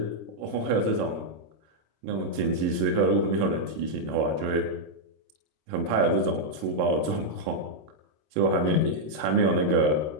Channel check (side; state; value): left; late; 26 ms